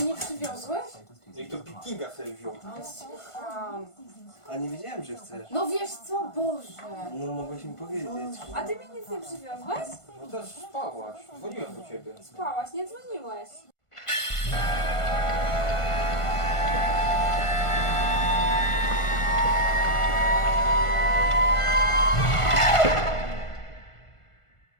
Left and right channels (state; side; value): late; right; 1.5 ms